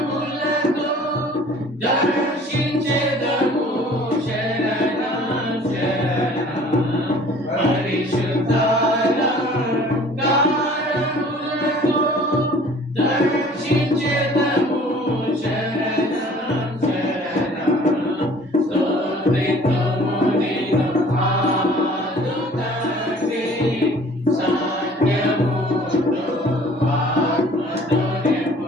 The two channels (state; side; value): normal; both; correlation 0.51